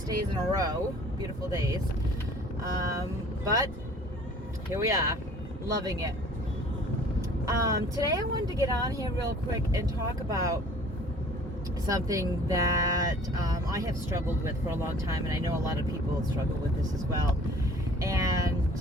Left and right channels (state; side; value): normal; both; correlation 0.50